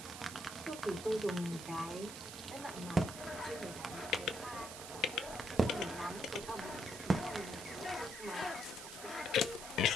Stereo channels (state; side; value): noise; right; hiss, 10 dB below the sound